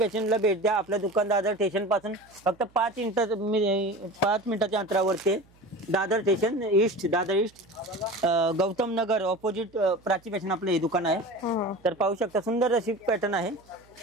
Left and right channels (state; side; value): noise; right; hum, 30 dB below the sound